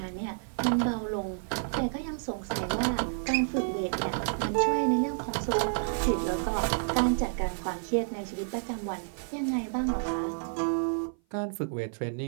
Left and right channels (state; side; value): silent; left; 55 dB below the other